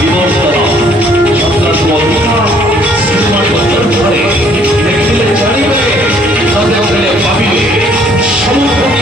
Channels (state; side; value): normal; both; correlation 0.62